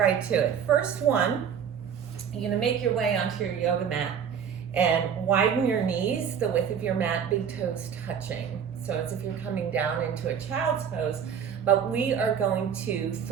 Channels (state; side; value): quieter; left; 7.7 dB